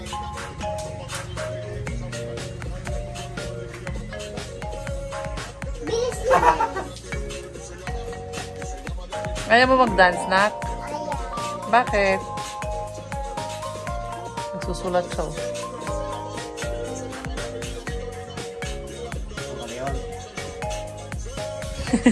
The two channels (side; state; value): both; identical; correlation 1.00